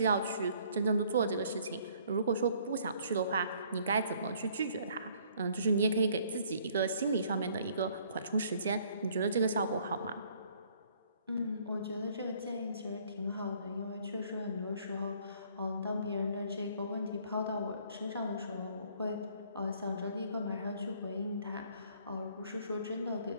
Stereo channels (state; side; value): inverted; both; correlation -0.60